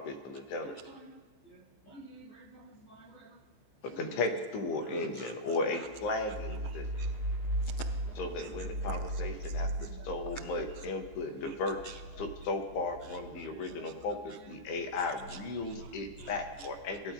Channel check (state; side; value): late; right; 14 ms